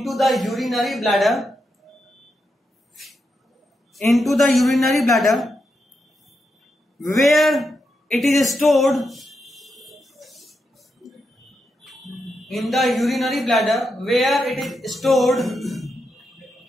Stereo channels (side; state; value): both; normal; correlation 0.85